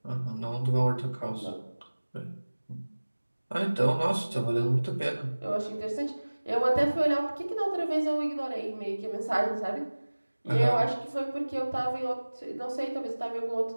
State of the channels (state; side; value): inverted; both; correlation -1.00